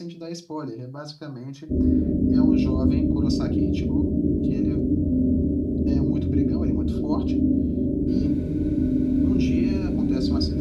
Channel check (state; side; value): identical; both; correlation 1.00